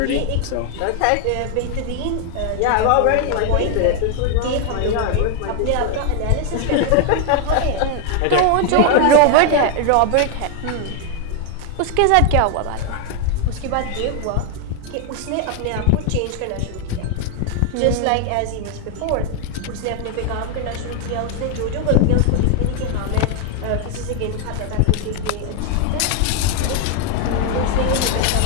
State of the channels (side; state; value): both; different; correlation 0.00